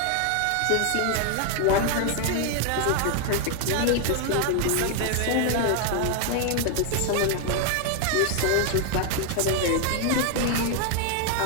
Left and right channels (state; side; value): different; both; correlation 0.00